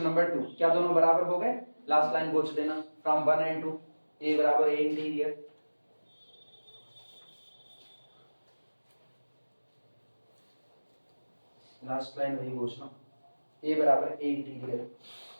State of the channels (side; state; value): both; inverted; correlation -1.00